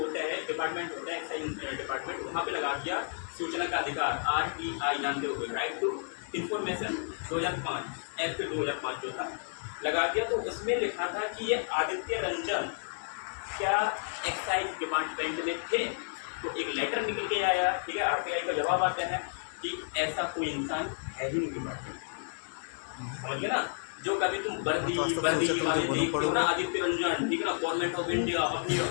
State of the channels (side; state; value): right; silent; digital silence